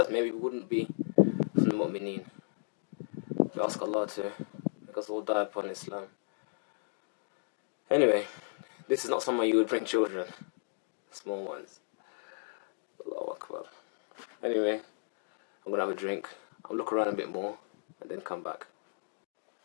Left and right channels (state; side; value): silent; right; digital silence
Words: maybe we wouldn't be from the Mu'mineen. We ask Allah to make us all die upon Islam. Anyway, this is not somewhere you would bring children, small ones. Allahu Akbar. Anyway, I'm gonna have a drink. I'll look around a bit more and then come back.